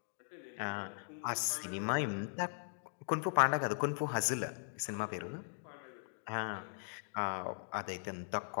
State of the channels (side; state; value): right; silent; digital silence